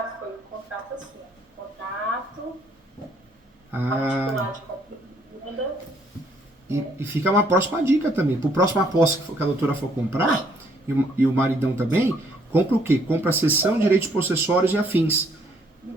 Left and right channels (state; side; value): normal; both; correlation 0.66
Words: foi um contrato assim, contrato particular de compra e venda. E fica uma próxima dica também. Para a próxima posse que a doutora for comprar, e o maridão também, compra o quê? Compra a cessão, direitos possessórios e afins.